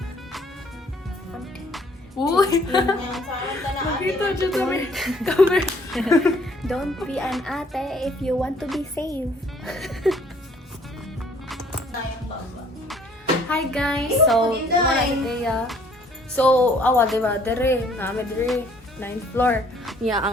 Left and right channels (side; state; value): both; normal; correlation 0.61